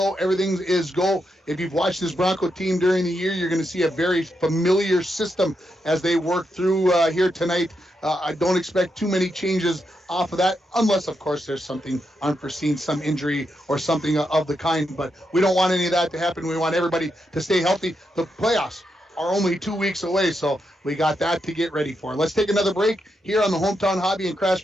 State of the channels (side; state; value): both; normal; correlation 0.83